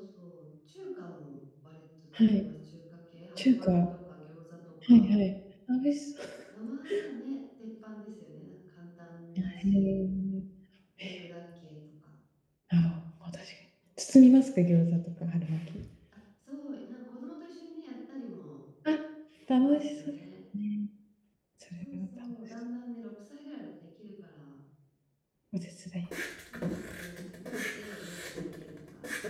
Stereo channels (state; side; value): identical; both; correlation 1.00